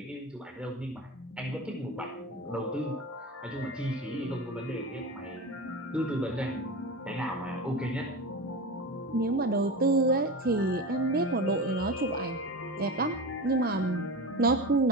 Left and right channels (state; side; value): normal; both; correlation 0.26